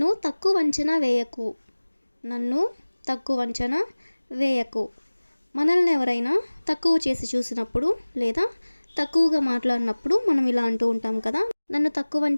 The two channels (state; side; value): inverted; both; correlation -1.00